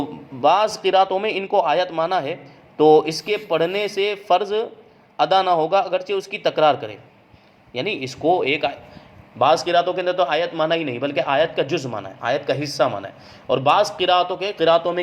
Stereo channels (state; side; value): identical; both; correlation 1.00